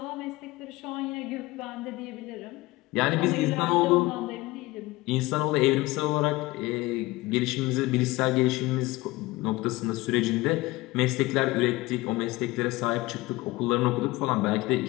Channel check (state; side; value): quieter; right; 20.4 dB